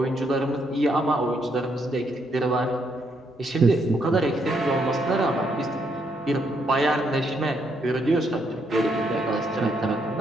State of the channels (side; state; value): both; normal; correlation 0.75